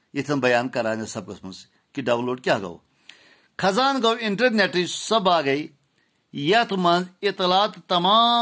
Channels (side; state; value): both; identical; correlation 1.00